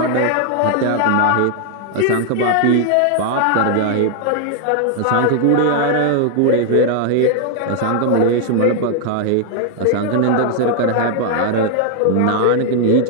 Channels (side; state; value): both; different; correlation 0.00